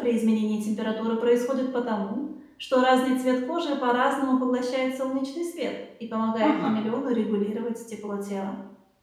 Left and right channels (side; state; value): both; identical; correlation 1.00